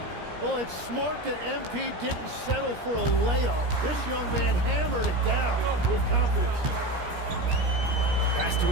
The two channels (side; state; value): left; late; 17 ms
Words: Well, it's smart that MP didn't settle for a layup. This young man hammered it down with confidence. Pass to